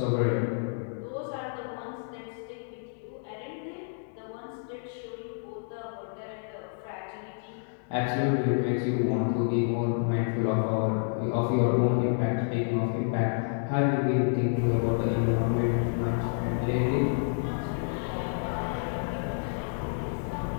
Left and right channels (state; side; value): silent; right; digital silence